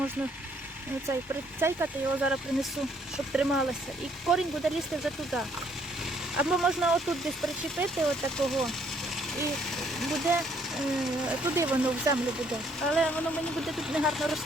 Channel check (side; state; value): both; normal; correlation 0.66